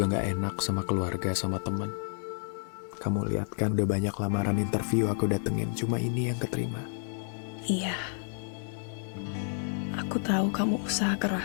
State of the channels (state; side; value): silent; right; digital silence